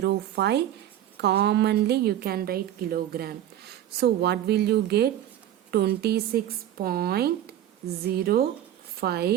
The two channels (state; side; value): quieter; left; 11.8 dB